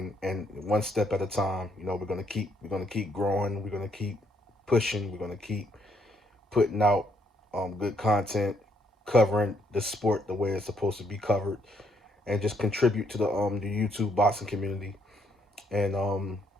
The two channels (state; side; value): normal; both; correlation 0.72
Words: And one step at a time. We're gonna keep growing. We're gonna keep pushing. We're gonna keep putting out good content, covering the sport the way it's supposed to be covered, and just contribute to the YouTube boxing community. And